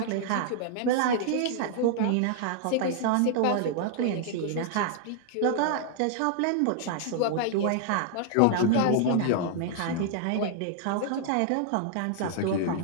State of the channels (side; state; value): both; different; correlation 0.00